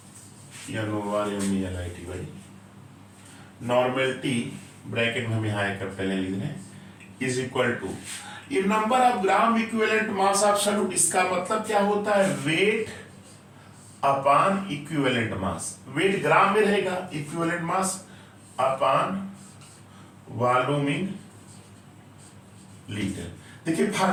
नॉर्मेलिटी ब्रैकेट में हम यहां आकर पहले लिख रहे हैं इज इक्वल टू ये number of gram equivalent mass of solute. इसका मतलब क्या होता है? Weight upon equivalent mass. Weight gram में रहेगा, equivalent mass upon volume in litre. देखिए,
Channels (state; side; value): identical; both; correlation 1.00